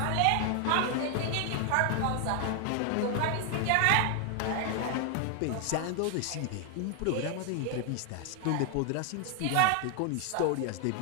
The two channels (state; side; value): different; both; correlation 0.00